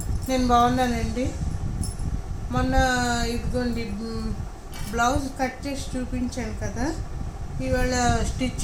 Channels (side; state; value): both; identical; correlation 1.00